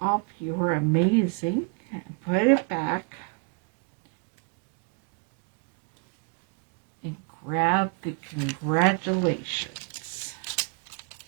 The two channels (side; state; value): left; quieter; 35.5 dB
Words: up your amazing and put it back. And grab the congratulations.